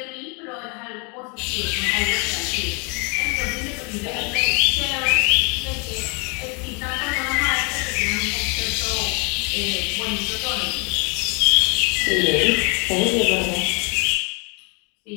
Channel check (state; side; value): quieter; right; 33.3 dB